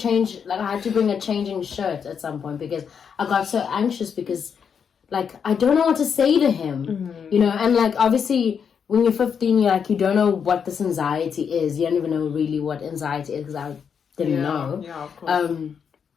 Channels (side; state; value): right; quieter; 7.0 dB